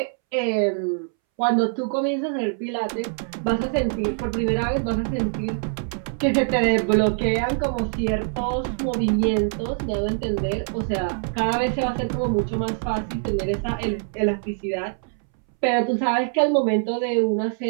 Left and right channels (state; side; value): silent; left; 63 dB below the other